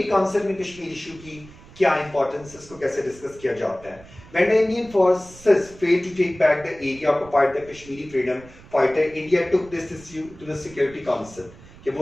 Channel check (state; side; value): noise; right; rumble, 21 dB below the sound